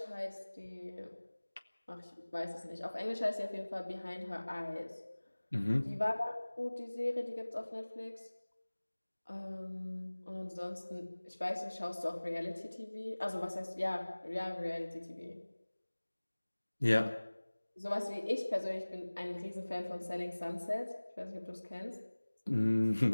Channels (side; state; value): both; inverted; correlation -1.00